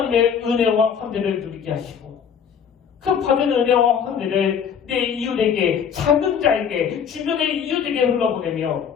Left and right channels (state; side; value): quieter; right; 7.4 dB